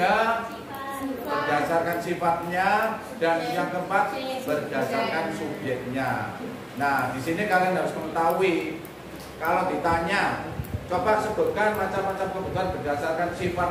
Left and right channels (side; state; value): both; identical; correlation 1.00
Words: berdasarkan sifatnya. Dan yang keempat, berdasarkan subjeknya. Nah, di sini kalian harus mengetahui. Kalau ditanya, coba sebutkan macam-macam kebutuhan berdasarkan